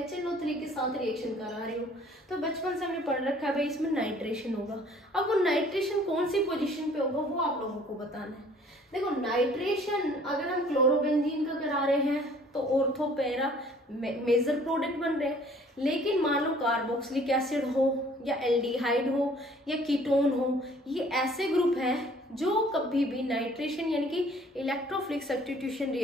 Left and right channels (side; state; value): both; normal; correlation 0.55